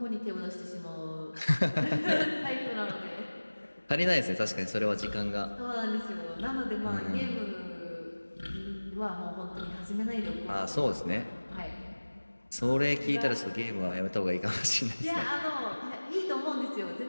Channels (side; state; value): both; inverted; correlation -1.00